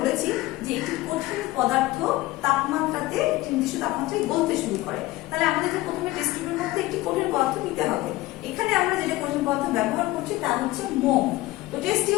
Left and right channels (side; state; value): right; quieter; 18.5 dB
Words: যে একটি কঠিন পদার্থ তাপমাত্রাতে, একটি নির্দিষ্ট তাপমাত্রায় গলতে শুরু করে, তাহলে আমাদেরকে প্রথমে টেস্ট টিউবের মধ্যে একটি কঠিন পদার্থ নিতে হবে। এখানে আমরা যেটা কঠিন পদার্থ ব্যবহার করছি তা হচ্ছে মোম। তো টেস্ট